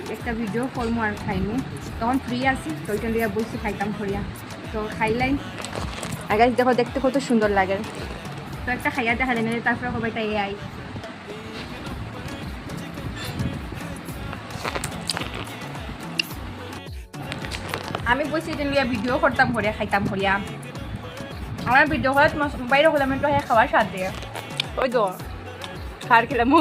একটা ভিডিও করবো আর খাইমু। তখন ফ্রি আছি, তো ওইটা লিয়ে বলছি খাইতাম করিয়া। তো খাইলাই আর গাইস দেখো দেখতে কত সুন্দর লাগে। তো একটা খাইয়া দেখা যায় না, তারপরে সবাইটা এ আই। আমি বলছি যে লিয়া ভিডিও করতাম করিয়া খাইতাম করিয়া। আমার ভিডিও করে বাইরে হলাম একটু খাওয়ার স্বাদ দিয়ে। ওই তো খার খেলাম,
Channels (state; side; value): identical; both; correlation 1.00